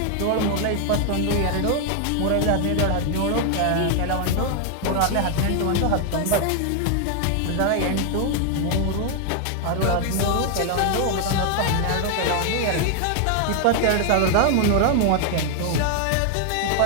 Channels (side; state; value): both; different; correlation 0.00